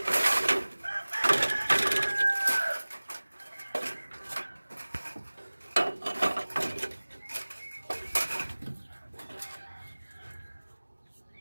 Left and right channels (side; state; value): both; inverted; correlation -1.00